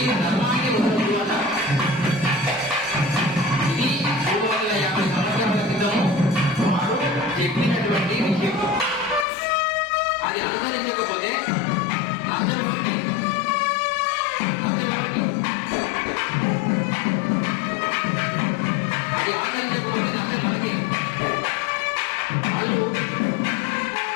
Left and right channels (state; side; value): drops out; right; at 9.2 s